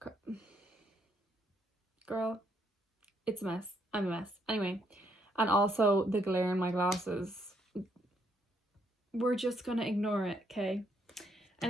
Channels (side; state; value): both; normal; correlation 0.73